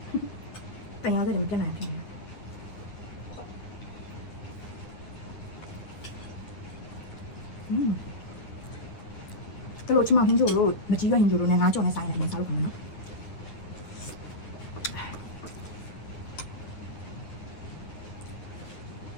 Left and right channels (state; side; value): late; right; 9.7 ms